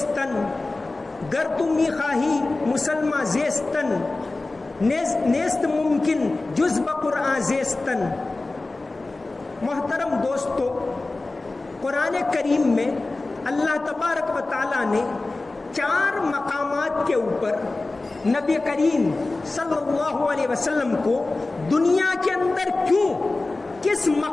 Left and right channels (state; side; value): quieter; right; 3.2 dB